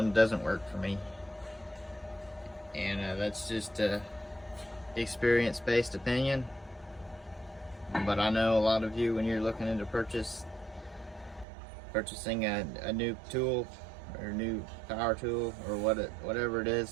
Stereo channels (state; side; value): drops out; left; at 11.5 s